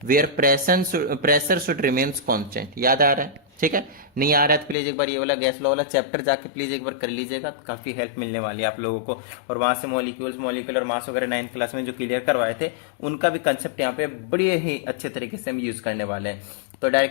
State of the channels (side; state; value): right; drops out; at 4.8 s